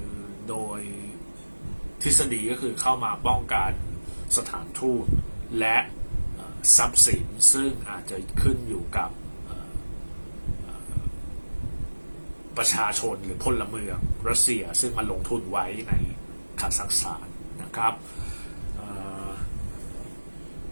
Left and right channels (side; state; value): both; inverted; correlation -1.00